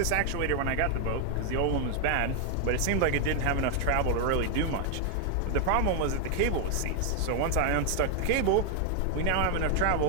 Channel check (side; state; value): both; different; correlation 0.01